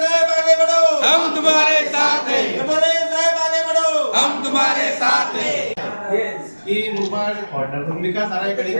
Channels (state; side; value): inverted; both; correlation -1.00